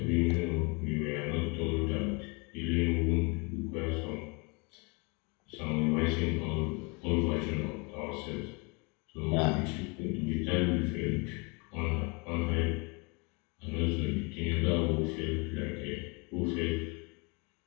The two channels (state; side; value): quieter; right; 30.6 dB